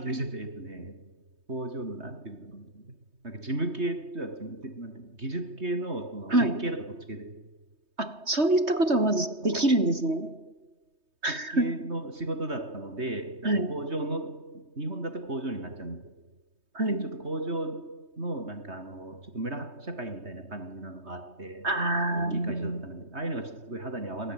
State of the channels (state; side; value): late; left; 3.2 ms